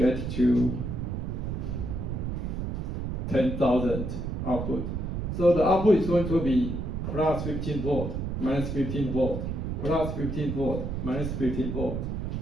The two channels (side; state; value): right; noise; rumble, 3 dB below the sound